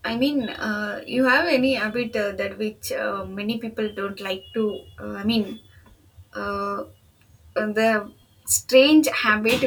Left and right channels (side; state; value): both; identical; correlation 1.00